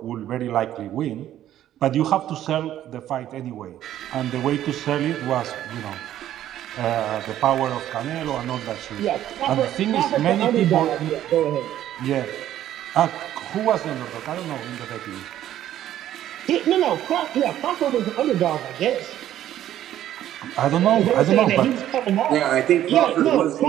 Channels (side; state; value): left; quieter; 12.2 dB